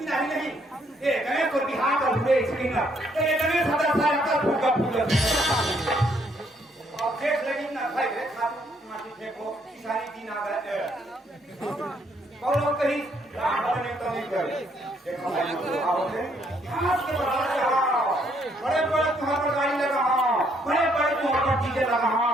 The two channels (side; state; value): both; normal; correlation 0.70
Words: नहीं ये गणेश को बिहार का हुए स्क्रीन ये गणेश 1000 साल का फूका फूल अब देख लगी ना भाई माटी फेंको सारी दिन आ गए और कहीं रात भरने तो नहीं कर देखो भाई आओगे घास के बराबर बड़े बड़े तुम्हारे पर गाड़ी लगा बड़े बड़े तुम्हारे पर डीजे लगा